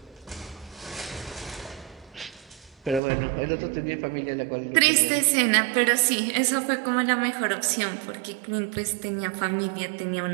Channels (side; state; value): left; drops out; at 3.0 s